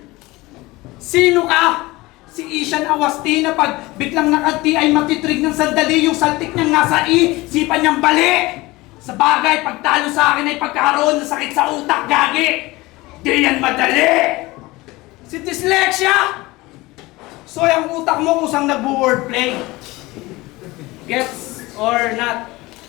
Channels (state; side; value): quieter; right; 20.9 dB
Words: Sino ka? Si Ishan Awasti na pag biglang nakati ay matitrig ng sandali, yung saltik niyang nasa sipan niyang bali. Sa bagay, pagtalo sa akin ay pagkakaroon ng sakit sa utak, gagi. Di yan madali! Si dyslexia! So yung utak mo kusang nag-wordplay. Gets or not?